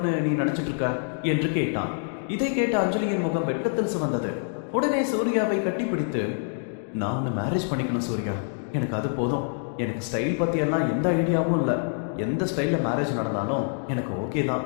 நீ நினைச்சிட்டு இருக்க என்று கேட்டான். இதை கேட்ட அஞ்சலியின் முகம் வெட்கத்தில் சிவந்தது. உடனே சூர்யாவை கட்டிப்பிடித்து, நான் உன்னை மேரேஜ் பண்ணிக்கணும் சூர்யா, எனக்கு அது போதும். எனக்கு ஸ்டைல் பத்தி எல்லாம் எந்த ஐடியாவும் இல்லை. எந்த ஸ்டைல்ல மேரேஜ் நடந்தாலும் எனக்கு ஓகே தான்.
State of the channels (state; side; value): silent; right; digital silence